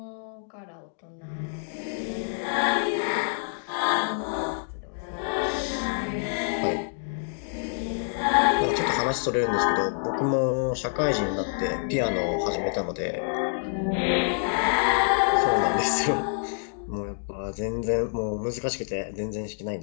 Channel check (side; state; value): right; silent; digital silence